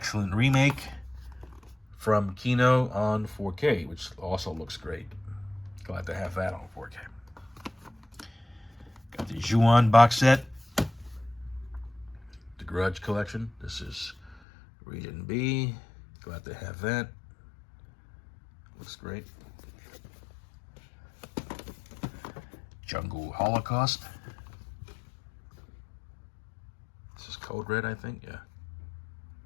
remake from Kino on 4K, which also looks great. Glad to have that on 4K. Got the Ju-On box set. The Grudge collection. This is Region B. Glad to have that. Looks great. Jungle Holocaust. This is Code Red, I think.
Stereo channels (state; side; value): drops out; right; at 14.4 s